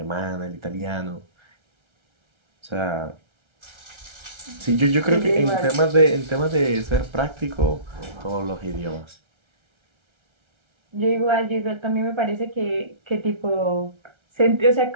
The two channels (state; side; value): late; left; 1.3 ms